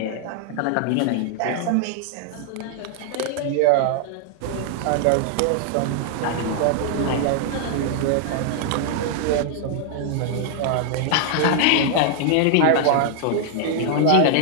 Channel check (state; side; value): different; both; correlation -0.01